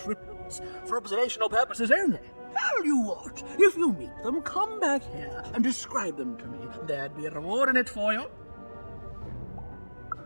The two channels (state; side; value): inverted; both; correlation -1.00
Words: for observational purposes only. Tell you what, if you meet them, come back here and describe them to me. There'd be a reward in it for you.